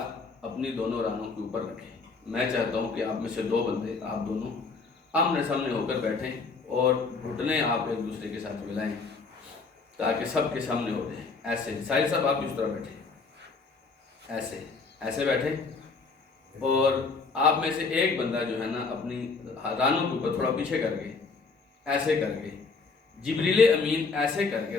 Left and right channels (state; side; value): quieter; right; 4.4 dB